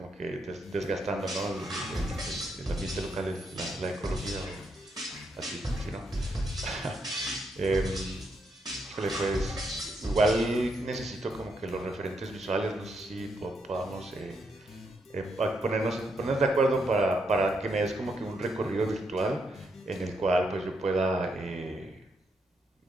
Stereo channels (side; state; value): both; normal; correlation 0.78